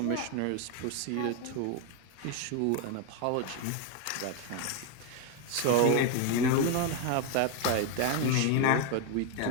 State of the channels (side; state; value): both; different; correlation 0.01